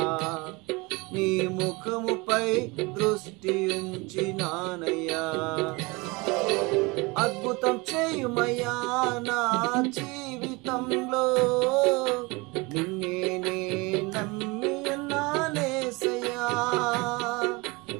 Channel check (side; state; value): left; quieter; 25.6 dB